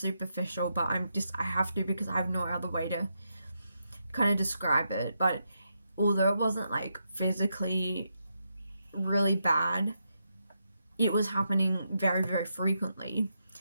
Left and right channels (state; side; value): inverted; both; correlation -0.83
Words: but I have to because I have no other way to kind of describe it, but although it wasn't like physically really bad, it was happening very, very frequently.